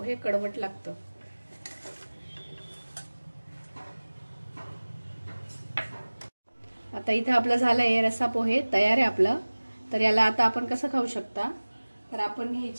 कडवट लागतं. आता इथं आपलं झालंय रस्सा पोहे तयार आहे आपलं. तर याला आता आपण कसं खाऊ शकता, तर आपण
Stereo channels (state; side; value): inverted; both; correlation -1.00